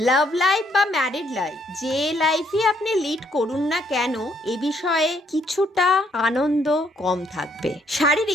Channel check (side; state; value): both; normal; correlation 0.70